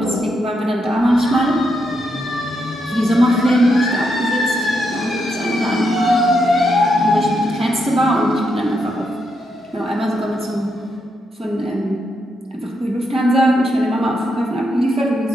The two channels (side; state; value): both; normal; correlation 0.81